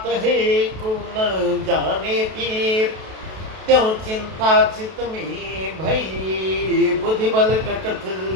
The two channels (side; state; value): left; late; 32 ms